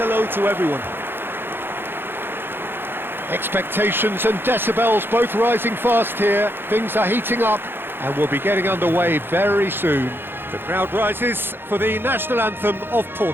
to everyone. Expectations and decibels both rising fast here. Things are heating up, and we'll be getting underway very soon. The crowd rises for the national anthem of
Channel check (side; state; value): left; late; 0.10 ms